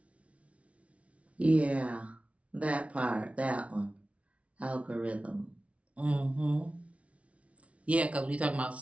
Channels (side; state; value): left; late; 0.064 ms